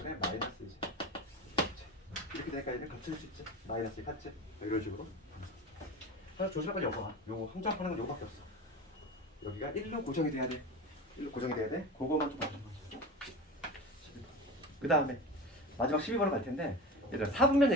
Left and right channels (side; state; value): both; normal; correlation 0.29